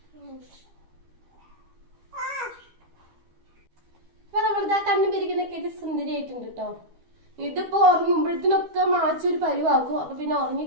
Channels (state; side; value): late; left; 12 ms